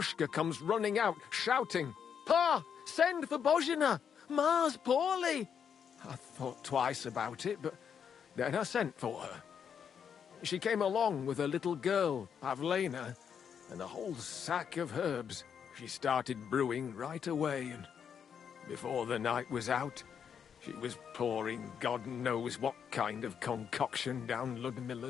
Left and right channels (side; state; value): right; quieter; 7.6 dB